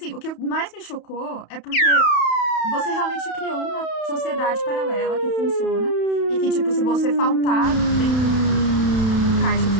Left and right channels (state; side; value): late; right; 31 ms